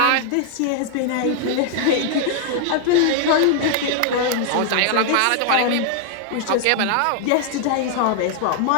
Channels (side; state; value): both; different; correlation 0.00